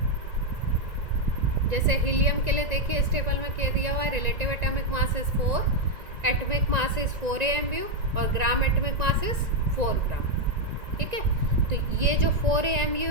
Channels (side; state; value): left; late; 1.9 ms